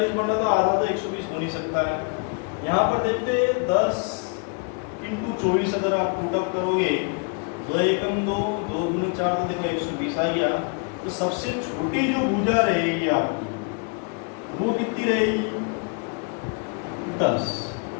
बन रहा, तो आधा तो 120 हो नहीं सकता है। यहाँ पर देखते 10 × 24 अगर आप पुटअप करोगे, 2 एकम 2, 2 दूनी 4, तो देखो 120 आ गया। तो सबसे छोटी जो भुजा रहेगी आपकी वो कितनी रहेगी 10,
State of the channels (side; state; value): right; quieter; 37.1 dB